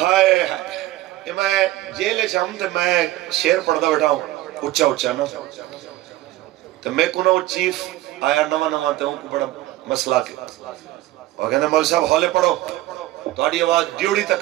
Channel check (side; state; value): left; quieter; 16.3 dB